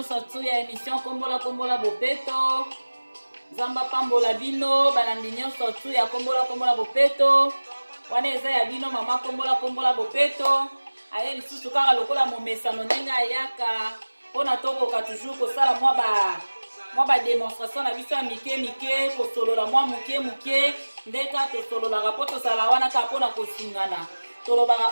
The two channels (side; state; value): both; inverted; correlation -1.00